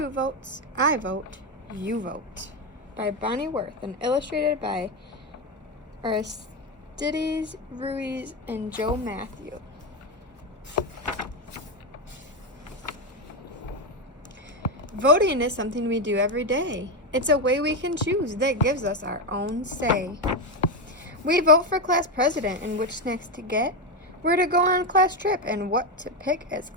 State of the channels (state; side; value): normal; both; correlation 0.10